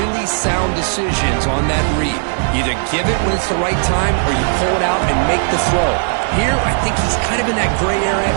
sound decisions on that read. Either give it when it's the right time, or you pull it out and make the throw. Here, I think he's kind of in that gray area,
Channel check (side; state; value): left; silent; digital silence